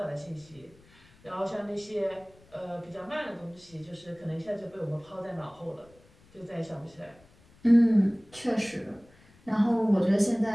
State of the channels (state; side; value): noise; left; rumble, 28 dB below the sound